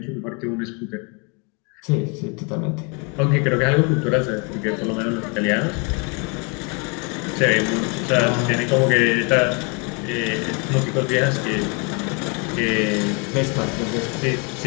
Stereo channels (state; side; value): quieter; right; 33.8 dB